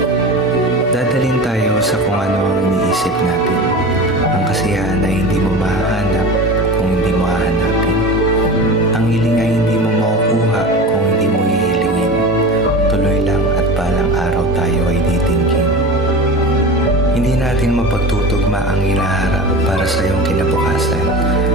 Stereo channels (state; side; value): normal; both; correlation 0.31